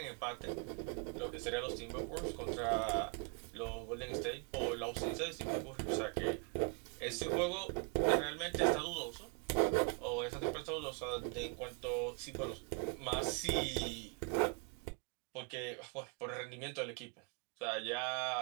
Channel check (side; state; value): left; quieter; 36.8 dB